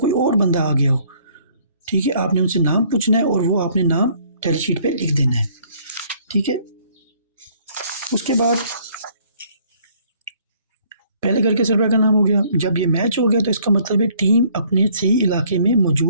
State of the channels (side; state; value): both; inverted; correlation -0.61